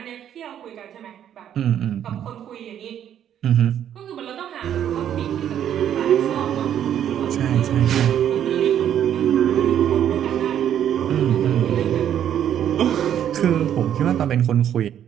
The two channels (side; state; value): left; quieter; 10.0 dB